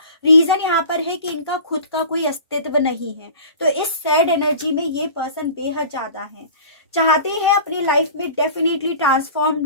रीजन यहाँ पर है कि इनका खुद का कोई अस्तित्व नहीं है। तो इस सैड एनर्जी में ये पर्सन बेहद ज्यादा है, चाहते हैं अपनी लाइफ में डेफिनेटली ट्रांसफॉर्म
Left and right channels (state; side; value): inverted; both; correlation -0.41